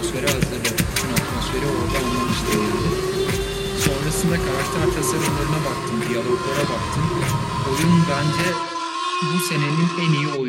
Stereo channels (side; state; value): both; identical; correlation 1.00